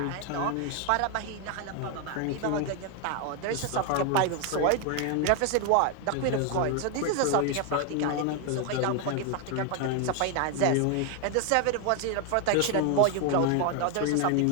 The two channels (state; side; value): different; both; correlation 0.01